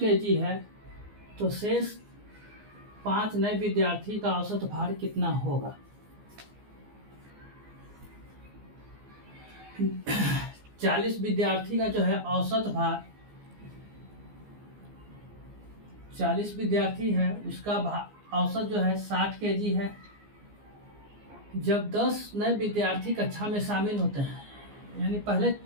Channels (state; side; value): late; left; 14 ms